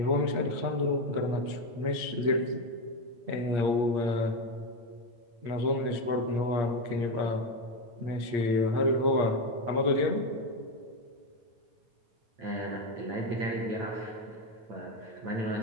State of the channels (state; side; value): late; left; 8.6 ms